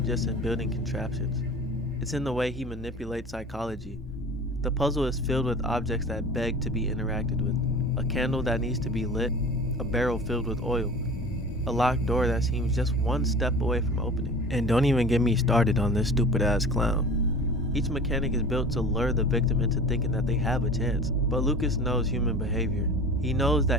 just in building contraptions, it's in the way he manipulates psychology. The puzzle is filled with objects that beg to be interacted with. A candle that needs to be lit, a barrel filled with oil, a locked door that seems just one step away from opening. And don't even get me started on this stupid ass clown. Each mechanic is built to lure the victim into thinking that they have a chance, but Lucas knows human behavior. He knows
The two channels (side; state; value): both; normal; correlation 0.39